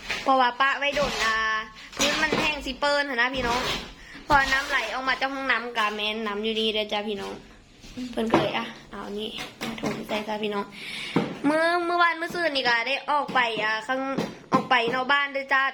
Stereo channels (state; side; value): identical; both; correlation 1.00